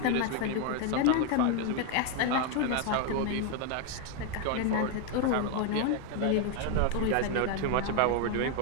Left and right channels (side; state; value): both; different; correlation 0.01